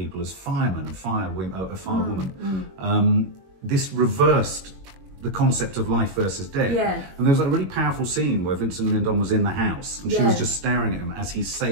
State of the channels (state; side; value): late; left; 21 ms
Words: as firemen and firewoman, this reversed the concept of life versus death. Yeah. And there was a really powerful scene where Vincent Lindon was in the house and she was just staring at him as he